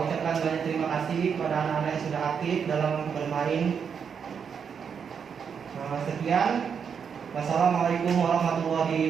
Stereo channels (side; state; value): left; quieter; 6.9 dB